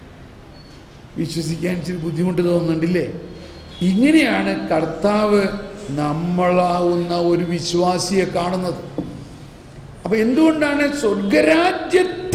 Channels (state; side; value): identical; both; correlation 1.00